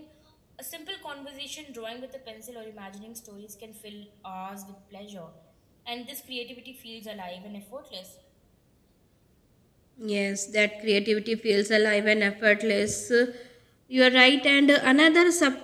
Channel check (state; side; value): identical; both; correlation 1.00